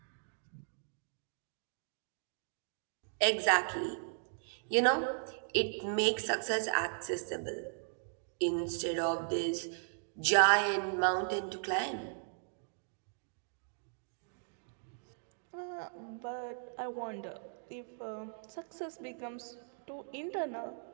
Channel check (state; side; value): silent; left; digital silence